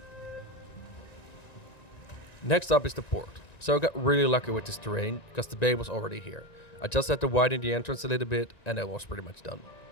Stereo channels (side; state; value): right; late; 1.9 ms